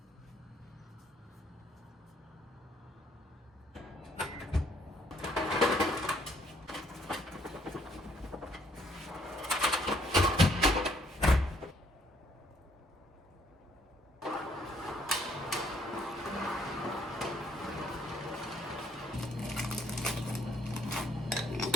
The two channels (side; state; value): both; normal; correlation 0.66